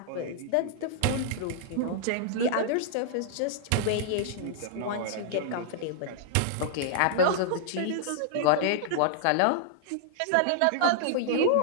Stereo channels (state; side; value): different; both; correlation -0.01